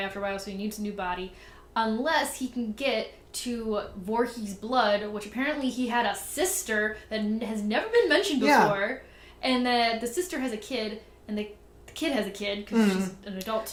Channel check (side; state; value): both; identical; correlation 1.00